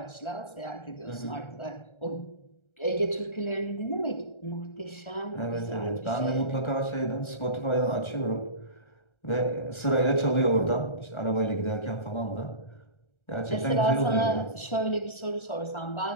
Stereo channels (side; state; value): right; late; 1.3 ms